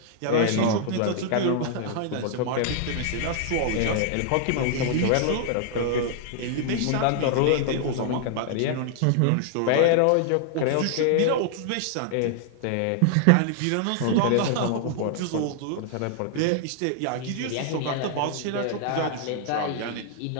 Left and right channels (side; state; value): both; different; correlation -0.01